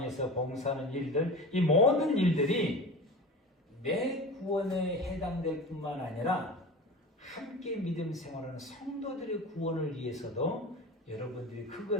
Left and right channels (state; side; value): normal; both; correlation 0.33